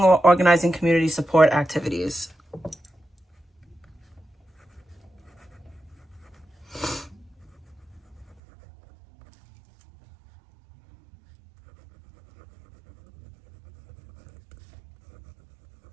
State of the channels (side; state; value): left; drops out; at 8.3 s